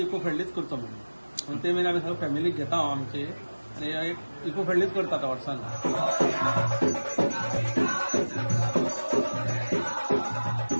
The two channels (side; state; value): both; inverted; correlation -1.00